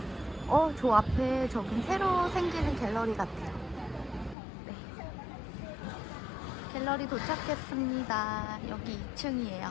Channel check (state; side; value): drops out; right; at 4.4 s